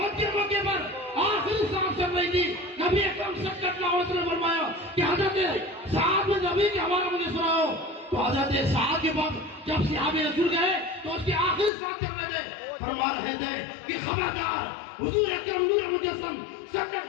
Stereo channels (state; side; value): drops out; right; at 11.7 s